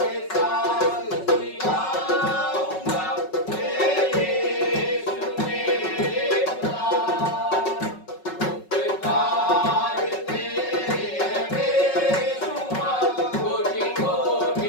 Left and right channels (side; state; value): right; late; 5.4 ms